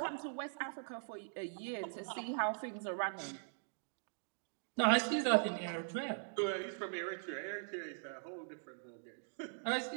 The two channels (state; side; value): silent; left; digital silence